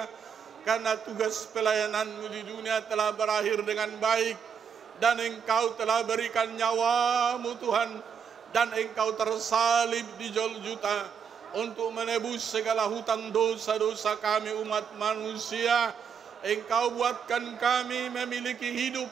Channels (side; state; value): left; quieter; 7.1 dB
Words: karena tugas pelayanan-Mu di dunia telah berakhir dengan baik, dan Engkau telah berikan nyawa-Mu Tuhan, dan Engkau tersalib di Golgota untuk menebus segala hutang dosa-dosa kami umat manusia. Engkau buatkan kami memiliki hidup